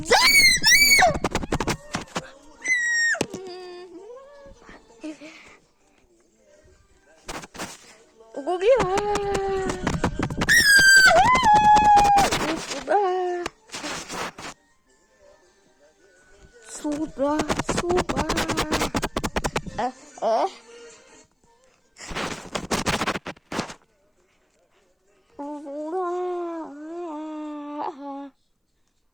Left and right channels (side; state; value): both; identical; correlation 1.00